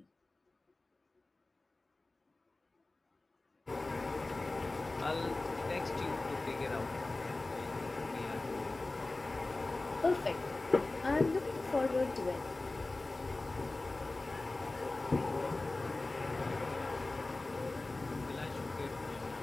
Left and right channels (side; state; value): right; quieter; 3.1 dB